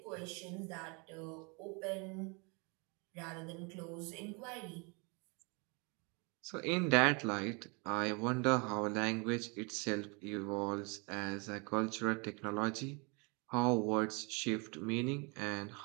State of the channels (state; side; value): quieter; left; 31.5 dB